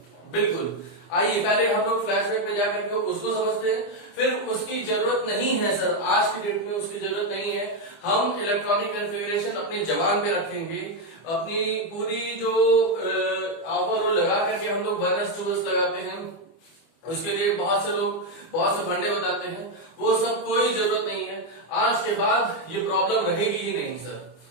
बिल्कुल। आइए पहले हम लोग फ्लैशबैक पे जाकर के उसको समझते हैं, फिर उसकी जरूरत नहीं है सर, आज की डेट में उसकी जरूरत नहीं है। हम इलेक्ट्रॉनिक कॉन्फ़िगरेशन अपनी जबान पे रखेंगे, अपनी पूरी जो ओवरऑल लगा करके हम लोग 1s 2s लगाते हैं, उसके लिए बहुत से लोग बहुत से फंडे बताते हैं, वो सब कोई जरूरत नहीं है। आज के बाद ये प्रॉब्लम रहेगी ही नहीं सर।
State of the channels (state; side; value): late; right; 25 ms